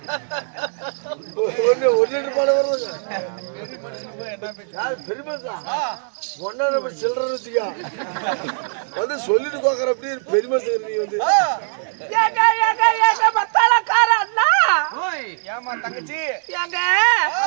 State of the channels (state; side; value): silent; left; digital silence